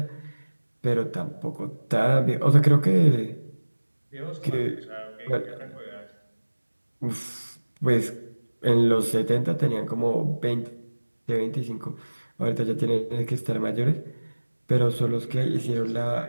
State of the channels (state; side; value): inverted; both; correlation -1.00